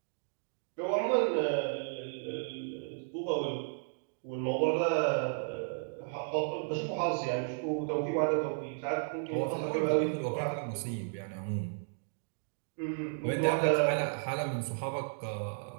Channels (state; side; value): silent; left; digital silence